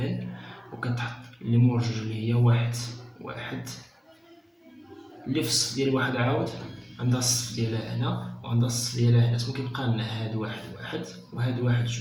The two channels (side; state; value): both; identical; correlation 1.00